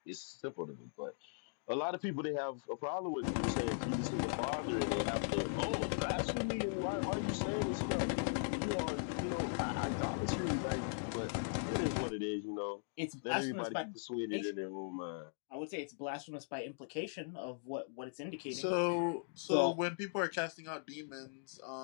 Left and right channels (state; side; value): silent; right; digital silence